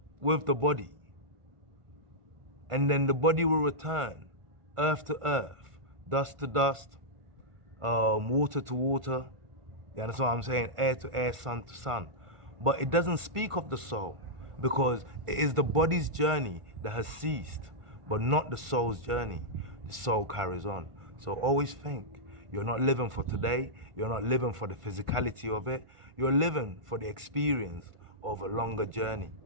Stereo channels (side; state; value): left; late; 1.5 ms